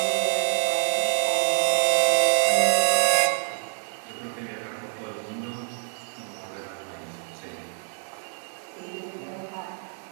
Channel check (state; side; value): silent; left; 59 dB below the other